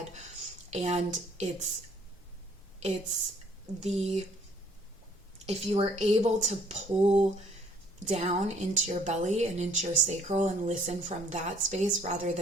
And if you were able to pull down into your belly and into your sacral and listen from that space rather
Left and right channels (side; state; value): both; normal; correlation 0.60